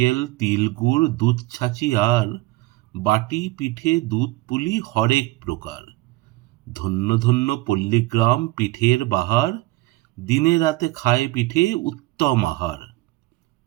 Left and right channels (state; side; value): quieter; left; 19.6 dB